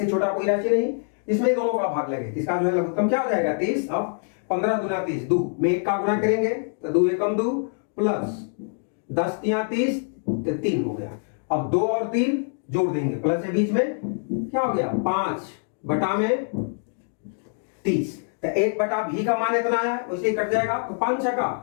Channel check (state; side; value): silent; right; 60 dB below the other